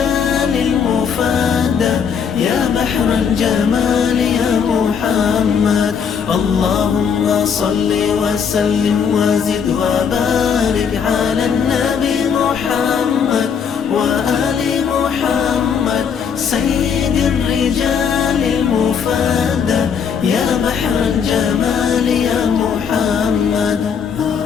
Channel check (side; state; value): right; quieter; 6.9 dB